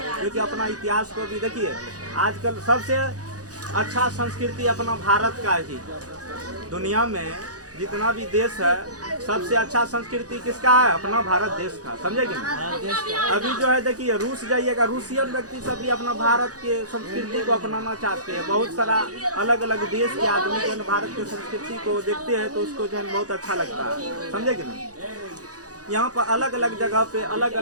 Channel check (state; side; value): late; left; 0.67 ms